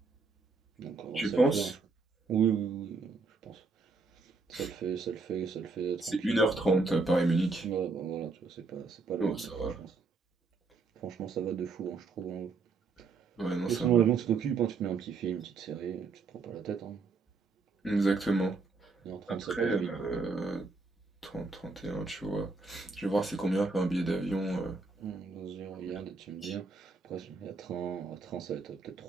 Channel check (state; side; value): quieter; left; 4.1 dB